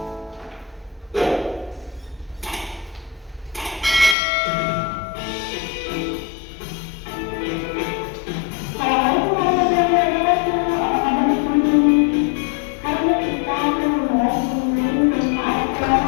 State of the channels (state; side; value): drops out; right; at 4.2 s